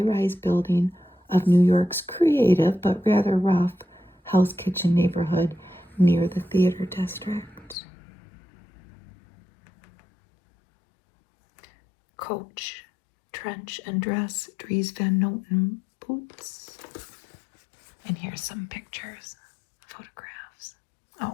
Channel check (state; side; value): drops out; right; at 7.8 s